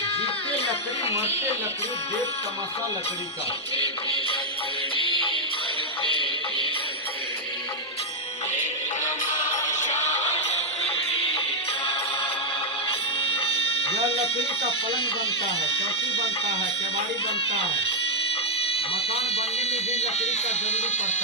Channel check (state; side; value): normal; both; correlation 0.00